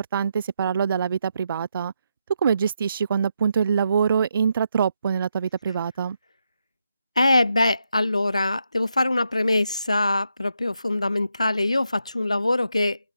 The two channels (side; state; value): both; inverted; correlation -0.82